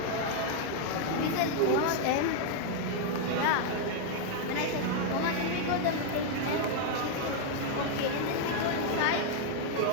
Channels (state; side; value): different; both; correlation 0.00